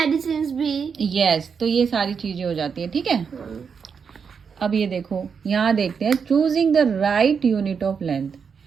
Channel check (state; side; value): quieter; left; 6.2 dB